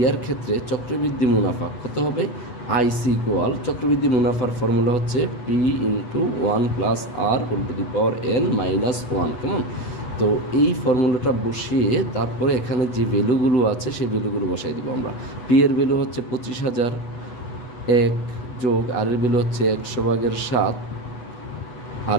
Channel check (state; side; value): late; right; 8.1 ms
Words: ক্ষেত্রে চক্রবৃদ্ধি মুনাফা কত হবে, আইসি ইকুয়াল চক্রবৃদ্ধি মুনাফার ফর্মুলা হচ্ছে P into 1 plus R whole to the power N minus 1, কেমন। তো এই ফর্মুলাটা বসিয়ে তারপরে এখানে যে ভ্যালুগুলো আছে সেই ভ্যালুগুলো বসাই দিব আমরা। পি এর ভ্যালু হচ্ছে 25,000, 1 যোগ আর এর ভ্যালু হচ্ছে 100/7, আর